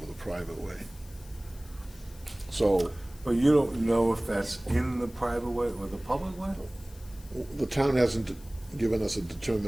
the private way. So, But you don't know if that's in the private way or the public way? the town hasn't given us a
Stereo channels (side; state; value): left; noise; hiss, 23 dB below the sound